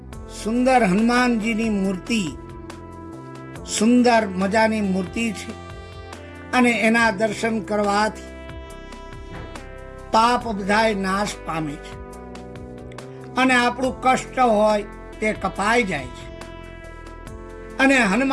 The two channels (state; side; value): identical; both; correlation 1.00